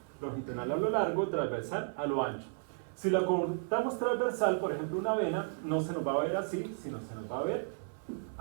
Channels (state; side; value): silent; left; 55 dB below the other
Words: Longitudinal a lo largo, transversal a lo ancho. Si la cortamos transversal, por ejemplo una vena, no se nos va a ver así, sino se nos va a ver